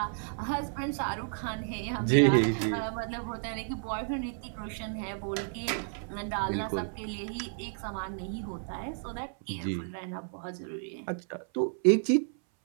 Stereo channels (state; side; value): silent; left; 56 dB below the other